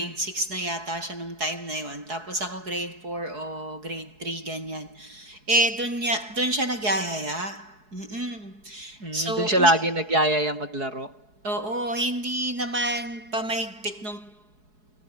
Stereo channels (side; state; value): left; late; 4.7 ms